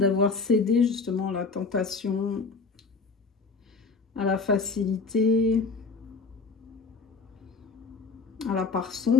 cédé justement à la tentation, à la facilité, à la part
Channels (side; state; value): right; quieter; 4.4 dB